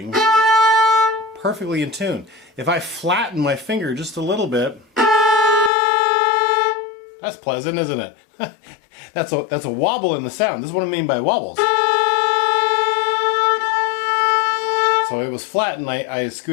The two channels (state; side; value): drops out; right; at 5.7 s